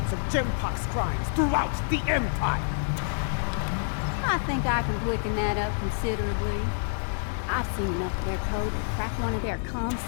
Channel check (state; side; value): silent; right; 60 dB below the other